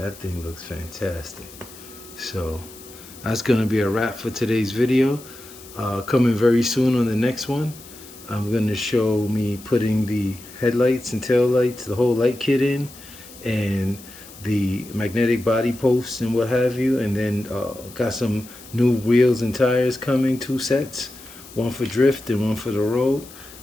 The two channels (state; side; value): noise; left; hiss, 19 dB below the sound